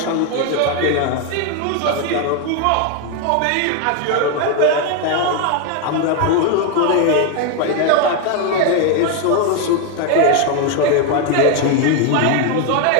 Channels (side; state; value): both; different; correlation 0.01